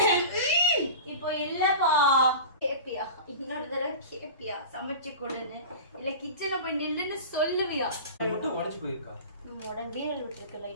இப்போ இல்லப்பா. கேப்பியா? இன்னொரு தடவை கேப்பியா? சமைச்சு கொடுன்னு இல்ல கிச்சன்ல போய் நில்லுன்னு சொல்லுவியா? மட்டும் உடைஞ்சு போயிருக்கா? நம்ம உடனே வீரல் விட்டுருக்கு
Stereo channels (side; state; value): both; inverted; correlation -0.34